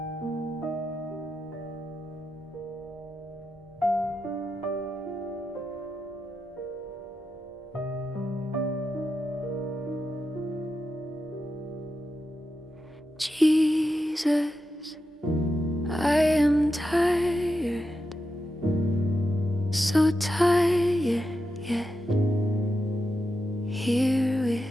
Jesus, I am tired, so tired, yet here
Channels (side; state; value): both; normal; correlation 0.88